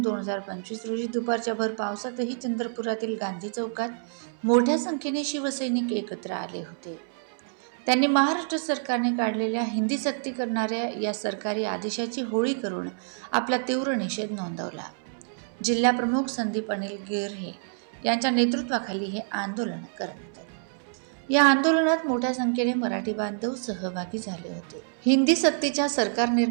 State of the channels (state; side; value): silent; left; 60 dB below the other